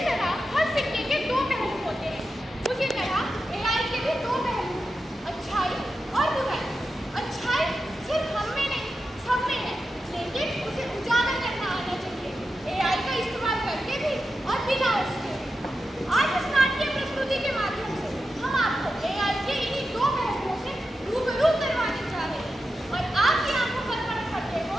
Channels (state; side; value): normal; both; correlation 0.90